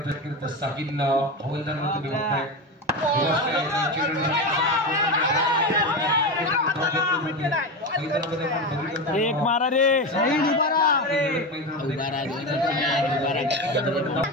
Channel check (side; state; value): both; normal; correlation 0.19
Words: साहिल हवालदार तुम्ही बघताय एक मारा रे साहिल उभा रहा